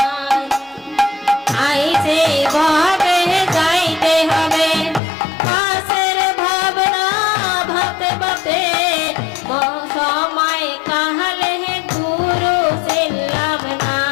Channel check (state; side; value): drops out; right; at 5.0 s